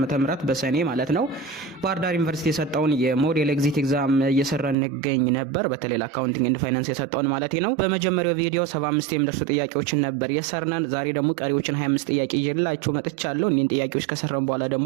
በሰኔ ማለት ነው ባህር ዳር ዩኒቨርሲቲ የሰጠውን የሞዴል ኤግዚት ኤግዛም እየሰራን እንገኝ ነበር። በተለይ ለአካውንቲንግ ኤንድ ፋይናንስ የሰጠውን ማለት ነው። በመጀመሪያው ቪዲዮ 75 የሚደርሱ ጥያቄዎችን ነበር የሰርናን። ዛሬ ደግሞ ቀሪዎችን 25 ጥያቄ ይዤላችሁ መጥቻለሁ። እኒን ጥያቄዎች ከሰራን በኋላ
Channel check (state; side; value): drops out; left; at 4.8 s